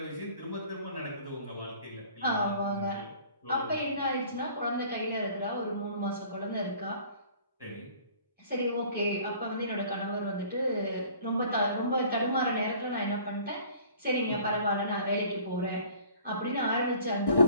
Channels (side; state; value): both; inverted; correlation -0.50